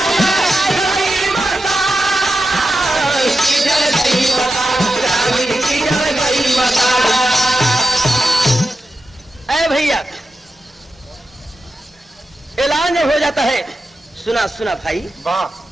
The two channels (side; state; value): both; normal; correlation 0.90